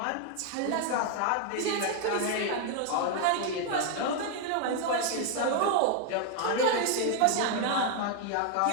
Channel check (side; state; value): both; different; correlation 0.00